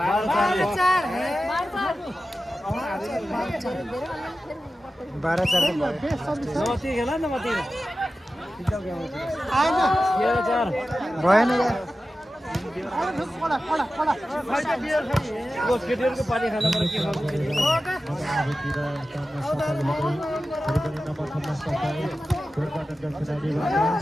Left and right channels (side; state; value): both; normal; correlation 0.94